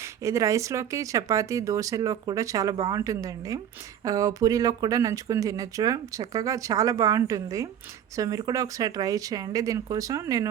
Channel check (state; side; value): quieter; left; 9.7 dB